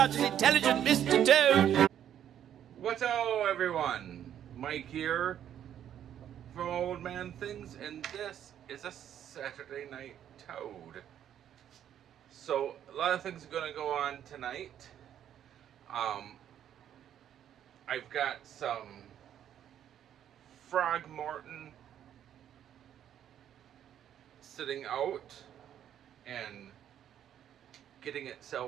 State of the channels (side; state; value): left; quieter; 10.2 dB